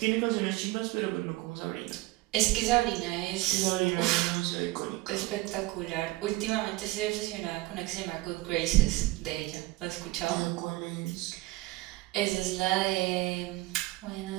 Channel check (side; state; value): left; quieter; 20.1 dB